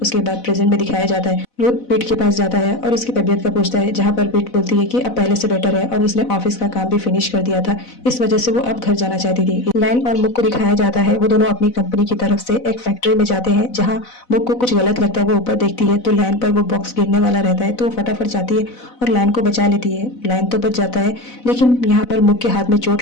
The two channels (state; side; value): late; right; 4.0 ms